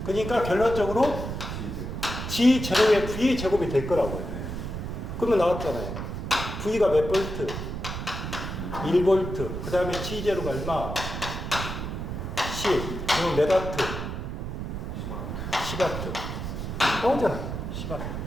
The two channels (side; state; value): right; noise; rumble, 5 dB below the sound